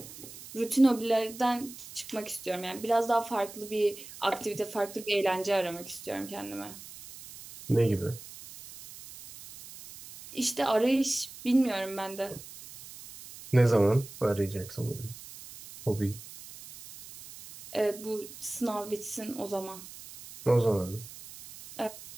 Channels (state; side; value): noise; right; hiss, 15 dB below the sound